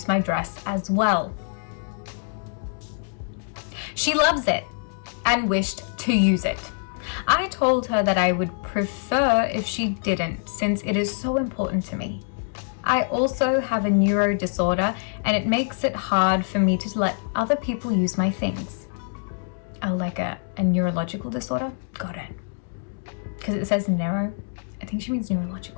my dress as well. She loves it and wished to use it. I told her that I would prefer if she didn't, since it is so important to me. I also have a neuro disorder, and it makes it hard for me to let other people use my things. Oh, like a neurological disorder? Got it. Because it says neuro. I think she means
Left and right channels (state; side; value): silent; right; digital silence